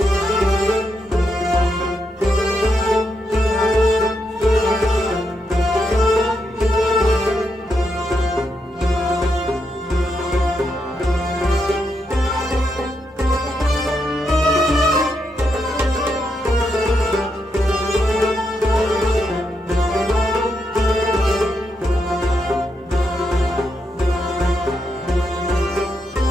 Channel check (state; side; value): normal; both; correlation 0.82